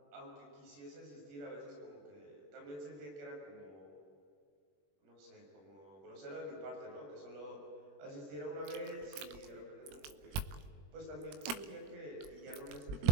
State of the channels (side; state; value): left; late; 21 ms